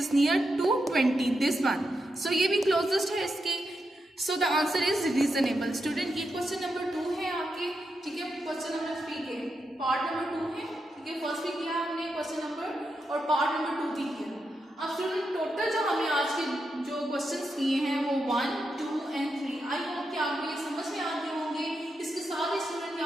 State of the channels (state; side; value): normal; both; correlation 0.85